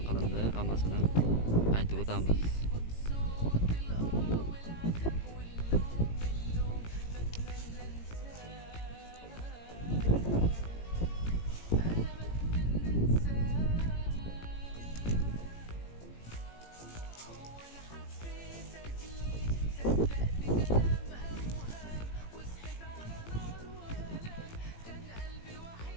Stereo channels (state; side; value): late; right; 18 ms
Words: qilindi, hammasini aytib o'tamiz.